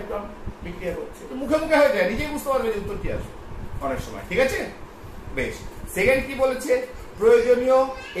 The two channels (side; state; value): both; identical; correlation 1.00